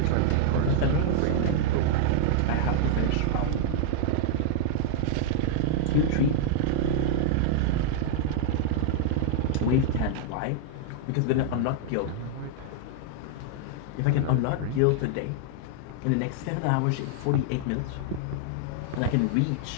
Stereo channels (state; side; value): different; both; correlation 0.00